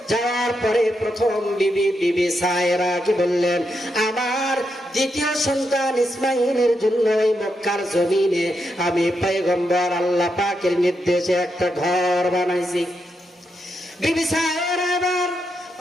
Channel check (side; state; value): both; normal; correlation 0.83